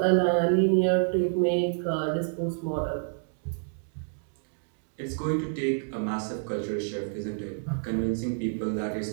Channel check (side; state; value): left; silent; digital silence